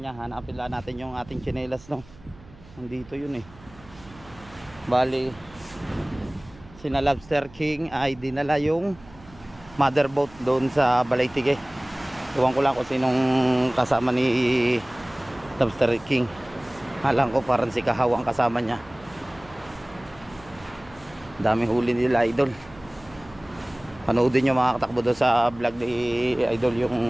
nga, hanapin lang natin yung ating tsinelas no. Nandito yun eh. Bali, sina Lobster King ay dinala yung motherboat doon sa Balaytige. Iwan ko lang kung sinong kasama ni Lobster King. Alam ko parang si Kahaw ang kasama niya. Daming huli nila Idol. Panoodin nyo mga katakbo doon sa vlog ni Idol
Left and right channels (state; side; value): noise; right; hum, 23 dB below the sound